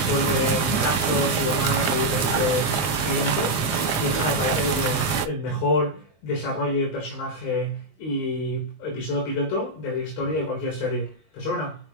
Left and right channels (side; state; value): right; late; 19 ms